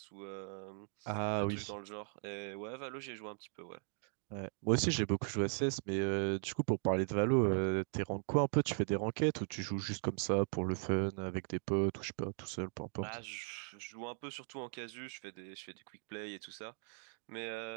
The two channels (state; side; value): silent; left; 52 dB below the other